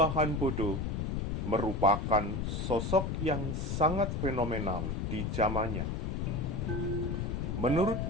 Bodo merupakan sosok yang sangat fenomenal di zamannya. Menurut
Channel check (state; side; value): noise; left; rumble, 1 dB below the sound